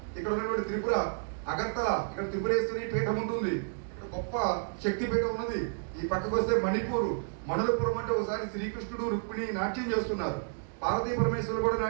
ఇక్కడ ఉన్నటువంటి త్రిపుర అగర్తల, ఇక్కడ త్రిపురేశ్వరి పీఠం ఉంటుంది, ఇక్కడ గొప్ప శక్తి పీఠం ఉన్నది. ఈ పక్కకు వస్తే మణిపూర్, మణులపురం అంటే ఒకసారి శ్రీకృష్ణుడు రుక్మిణి నాట్యం చేస్తున్నారు, పార్వతీ పరమేశ్వరులు కూడా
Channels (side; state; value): left; silent; digital silence